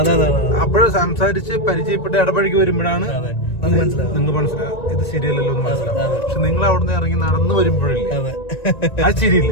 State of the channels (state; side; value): late; right; 1.9 ms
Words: അപ്പോഴും സംസാരിച്ച് പരിചയപ്പെട്ട് ഇടപഴകി വരുമ്പോഴാണ് നിങ്ങൾക്ക് മനസ്സിലാവും ഇത് ശരിയല്ലല്ലോ എന്ന് മനസ്സിലാവും. പക്ഷെ നിങ്ങൾ അവിടുന്ന് ഇറങ്ങി നടന്നു വരുമ്പോഴില്ലേ ആ